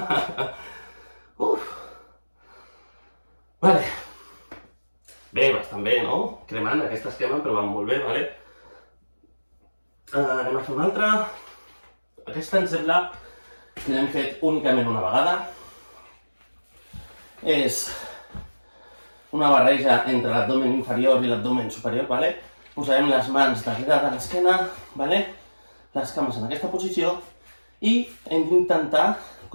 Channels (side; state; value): both; inverted; correlation -1.00